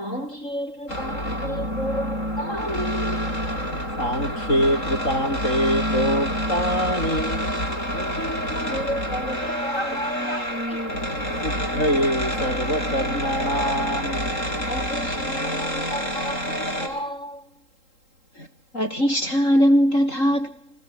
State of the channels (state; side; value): late; right; 3.8 ms